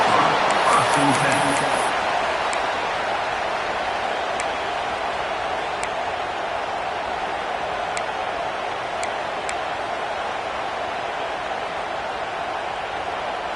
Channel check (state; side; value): identical; both; correlation 1.00